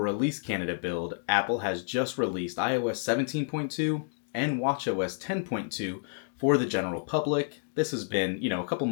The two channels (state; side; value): silent; right; digital silence